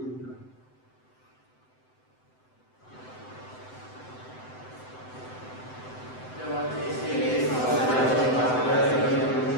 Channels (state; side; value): late; right; 7.9 ms